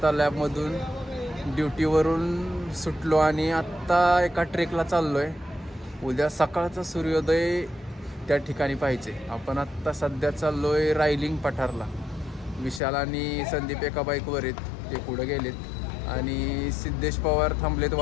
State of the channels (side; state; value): right; drops out; at 12.8 s